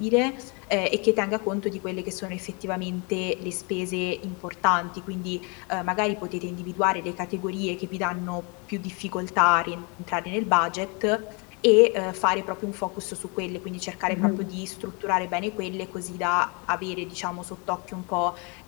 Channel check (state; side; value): quieter; right; 32.3 dB